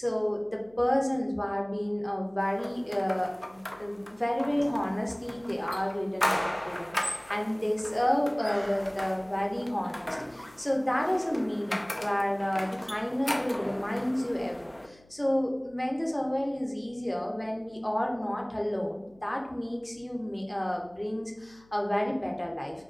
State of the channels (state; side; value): noise; left; hum, 29 dB below the sound